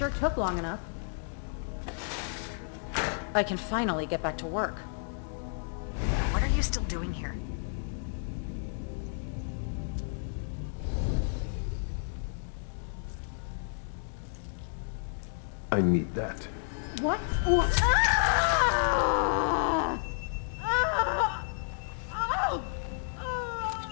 took long enough. I can finally get back to work. What are you still doing here? I need that. What? Ah! Ah! Oh!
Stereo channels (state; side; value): silent; right; digital silence